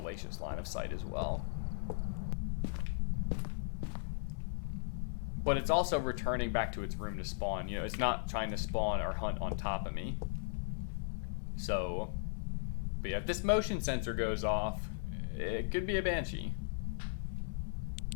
line of sight as well. But it's also returning back to its room to spawn. You know, it's not trying to spawn or hunt on top of me. So, but yeah, if this motion sensor goes off, it could be a Banshee.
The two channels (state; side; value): silent; right; 53 dB below the other